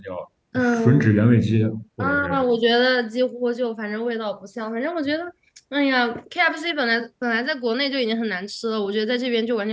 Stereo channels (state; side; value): identical; both; correlation 1.00